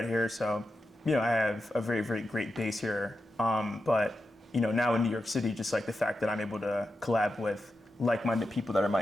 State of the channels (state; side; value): normal; both; correlation 0.89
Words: here, so, I have a very, very great base here. But, now in New York City, just like the fact that I'm able to collab with like-minded people that are